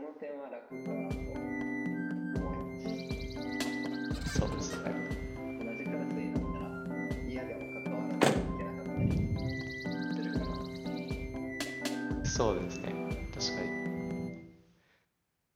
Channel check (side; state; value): both; identical; correlation 1.00